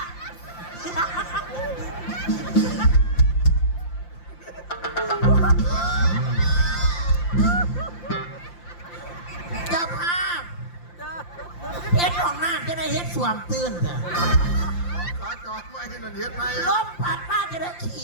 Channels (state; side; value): late; right; 5.8 ms